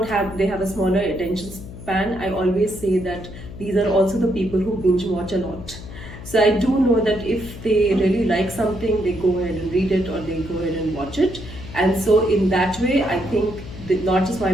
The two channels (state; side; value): noise; left; hum, 13 dB below the sound